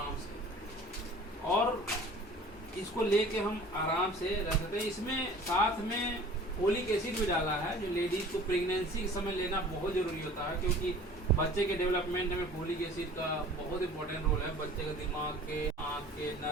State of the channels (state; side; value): normal; both; correlation 0.46